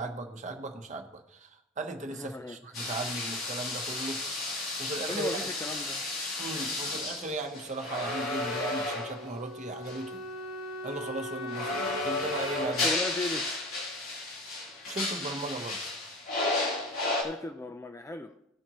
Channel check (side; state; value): both; normal; correlation 0.32